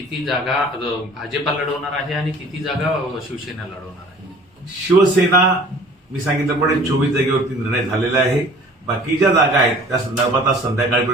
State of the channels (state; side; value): normal; both; correlation 0.48